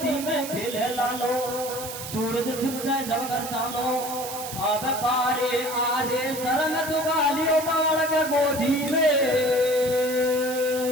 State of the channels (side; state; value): right; noise; hiss, 9 dB below the sound